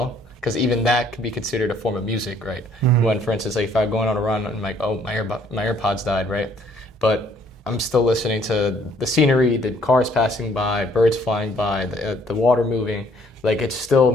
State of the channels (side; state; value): both; normal; correlation 0.62